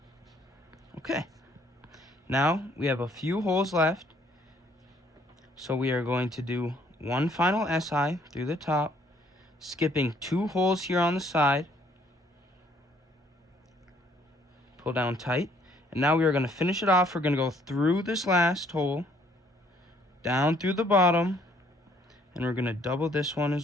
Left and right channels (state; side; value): normal; both; correlation 0.64